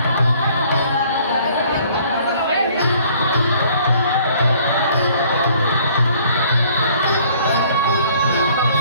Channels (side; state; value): both; inverted; correlation -0.58